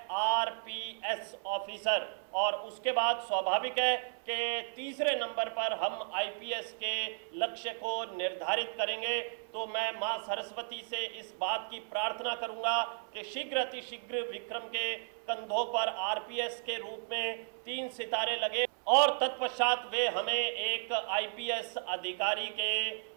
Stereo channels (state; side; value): silent; left; 55 dB below the other